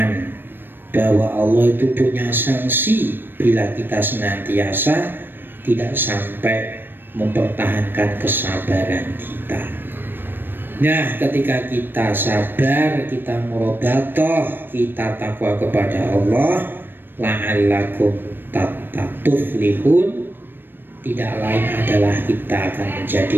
bahwa Allah itu punya sanksi bila kita senantiasa tidak sampai mempertahankan kesabaran kita. Nah, ketika kita sabar, kita murabatoh, kita takwa kepada Allah, la'allakum tuflihun, tidak lain adalah kita akan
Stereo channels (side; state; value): left; late; 0.096 ms